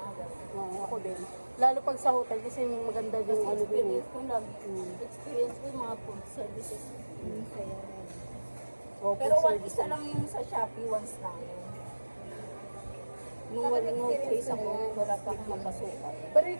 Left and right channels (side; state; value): both; inverted; correlation -1.00